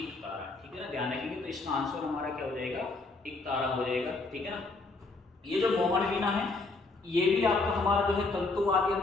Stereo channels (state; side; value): quieter; right; 3.5 dB